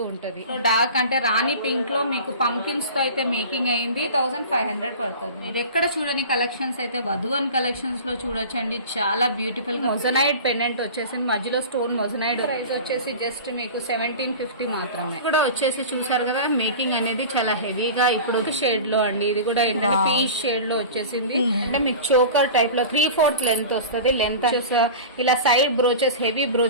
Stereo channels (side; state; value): both; inverted; correlation -0.35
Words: ఉంటది. డార్క్ అంటే రాణి పింక్ లో మీకు పంకిన్స్ తో అయితే మేకింగ్ అయ్యింది. 1500 పడుతుంది. ఇది ఎక్కడ చూడని కలెక్షన్స్ అయితే వధువన్ కలెక్షన్స్ లో చూడొచ్చండి. చాలా బ్యూటిఫుల్ గా మొజనైడ్ పెండెంట్ వచ్చేసింది. మధ్యలో స్టోన్ మొజనైడ్. ప్రైస్ వచ్చేసి జస్ట్ మీకు 1750 మాత్రమే. ఇక్కడ వచ్చేసి చూసారు కదా మేకింగ్ అనేది చాలా హెవీగా ఇప్పుడు షేడ్ లో అండి. ఇది కూడా ఏంటంటే పీచ్ షేడ్ లో వచ్చేసింది. అంటే మీకు చోకర్ టైప్ లో 3/4 లెంత్ వస్తుంది. లెంత్ ఇలా సైడ్ బ్రోచెస్ హెవీ